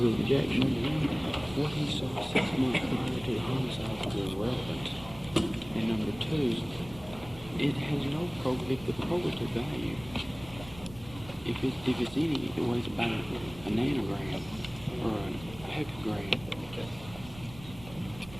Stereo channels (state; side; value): noise; right; rumble, 17 dB below the sound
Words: objection? What he saw 6 months prior to the homicide is irrelevant. And number two, it has no the probative value. If it's any, it weighs about a nanogram or a hecagram.